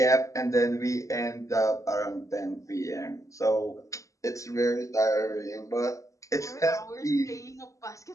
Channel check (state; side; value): late; right; 0.16 ms